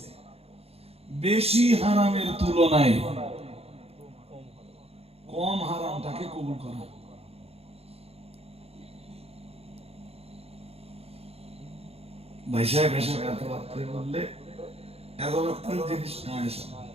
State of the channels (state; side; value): late; left; 0.29 ms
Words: বেশি হারামের তুলনায় কম হারামটাকে কবুল করা। ভাই সাহেব এসে এত রাত্রে বললে এত রাত্রের জিনিস না এসে